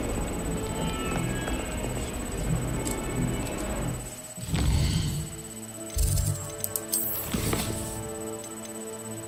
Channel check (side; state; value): both; identical; correlation 1.00